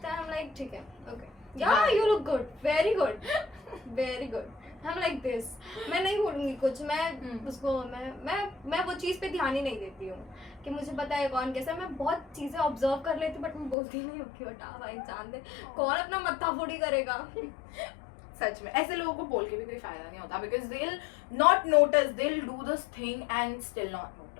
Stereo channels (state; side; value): drops out; right; at 13.8 s